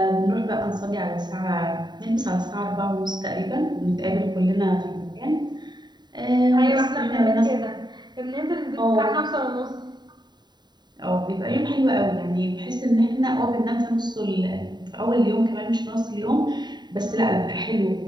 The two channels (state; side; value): late; left; 0.21 ms